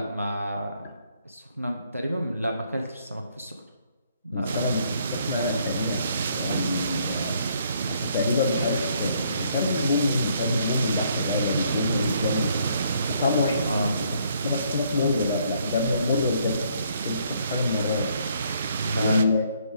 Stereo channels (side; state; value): both; inverted; correlation -0.68